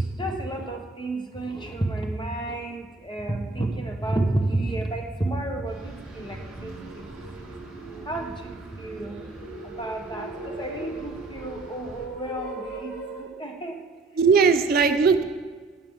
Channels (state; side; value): quieter; left; 3.5 dB